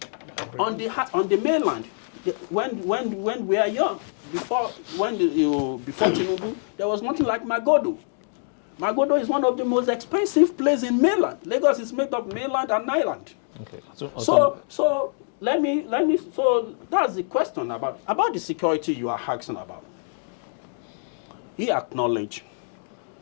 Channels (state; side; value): silent; right; digital silence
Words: On the mainland, when we are young, before Tinubu, there was nothing like Magodo. Magodo is one of the most expensive places in mainland. Lagos is made of mainland and island. Okay. So that's the question about the security you are asking about. He acknowledged